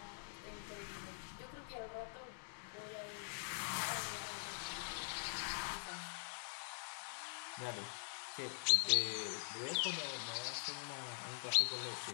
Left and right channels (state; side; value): silent; right; digital silence